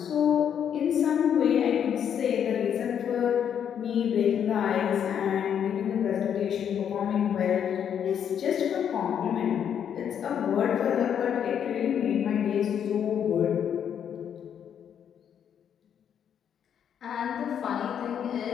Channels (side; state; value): right; quieter; 8.6 dB